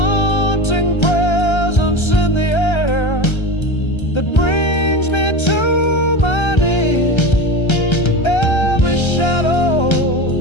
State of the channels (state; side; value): late; right; 1.3 ms